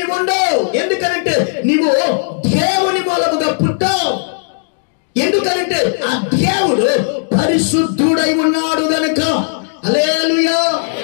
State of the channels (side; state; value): right; silent; digital silence